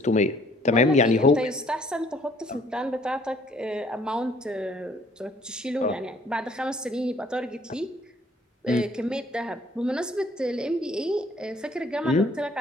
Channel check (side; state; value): both; normal; correlation 0.60